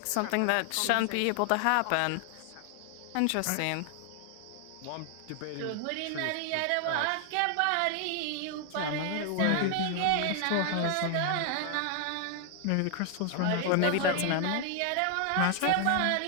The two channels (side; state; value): both; different; correlation 0.00